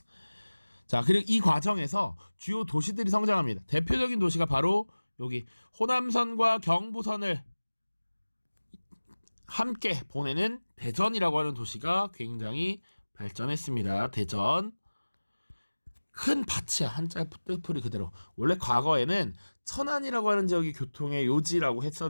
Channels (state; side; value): inverted; both; correlation -1.00